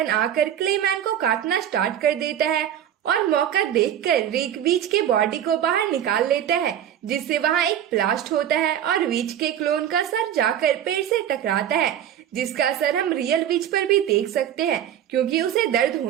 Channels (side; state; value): left; quieter; 10.3 dB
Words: आकर क्लेमैन को काटना स्टार्ट कर देता है और मौका देखकर रिक वीच के बॉडी को बाहर निकाल लेता है, जिससे वहाँ एक ब्लास्ट होता है और वीच के क्लोन का सर जाकर पेड़ से टकराता है, जिसका असर हम रियल विच पर भी देख सकते हैं क्योंकि उसे दर्द